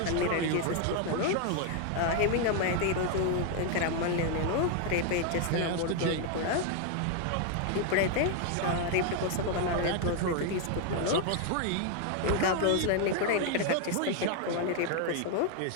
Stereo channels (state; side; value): different; both; correlation 0.00